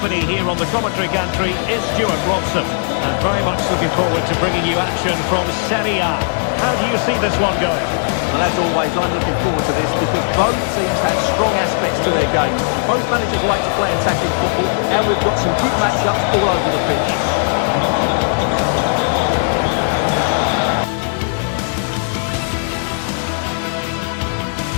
here on the commentary gantry is Stuart Robson. And very much looking forward to bringing you action from Serie A. How do you see this one going? Well, as always, I'm looking forward to this because both teams have strong aspects to their game. Both managers like to play attacking football, and we've got some good matchups all over the pitch.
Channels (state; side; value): silent; right; 68 dB below the other